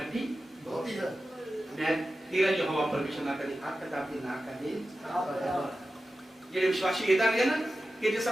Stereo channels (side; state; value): both; normal; correlation 0.93